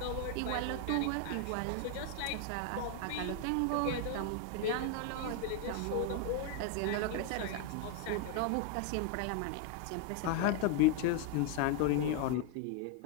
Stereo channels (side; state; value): both; different; correlation 0.01